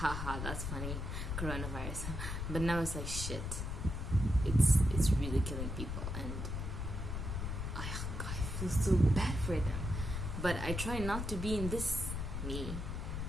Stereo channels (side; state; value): left; noise; rumble, 3 dB below the sound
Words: that's funny, coronavirus. But now it's like, shit, it's really killing people, and I feel so bad for them. But I try not to be in this me,